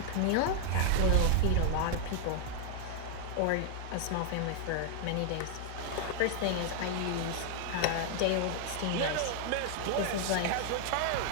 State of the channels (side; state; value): both; different; correlation 0.00